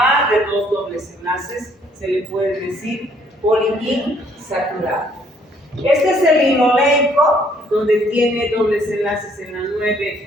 de dos dobles enlaces se le puede decir poliinsaturado. Este es el linoleico, donde tiene dobles enlaces en la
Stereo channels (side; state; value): both; normal; correlation 0.64